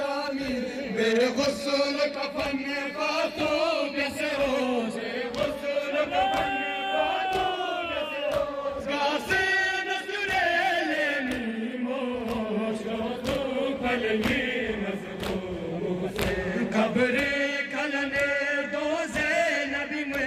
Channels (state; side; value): identical; both; correlation 1.00